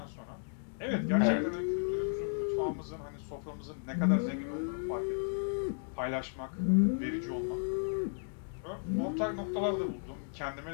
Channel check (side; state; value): right; silent; digital silence